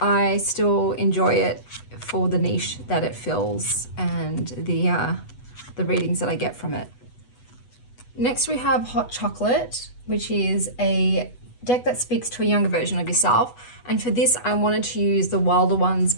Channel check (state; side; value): late; right; 8.1 ms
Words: still enjoy it for the niche that it fills and the readings that I get from it. Next we have Hot Chocolate, which is a deck that speaks to a younger version of yourself. And for this, I wanted to use the Wilder Ones